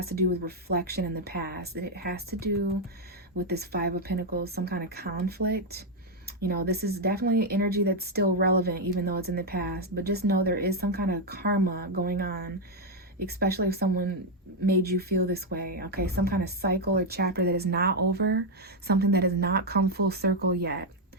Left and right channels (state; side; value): normal; both; correlation 0.02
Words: to do with reflection in the past, and it has to do with this 5 of Pentacles, some kind of conflict. You know, this is definitely energy that's still relevant, even though it's in the past. But just know there is some kind of karma going on, especially if someone made you feel this way. Okay, some kind of cycle or chapter that is not over, something that has not come full circle yet.